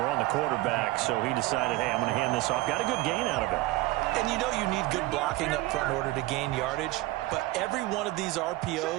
on the quarterback, so he decided, hey, I'm going to hand this off. Got a good gain out of it. And you know you need good blocking up front in order to gain yardage, but every one of these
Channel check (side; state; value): left; quieter; 18.6 dB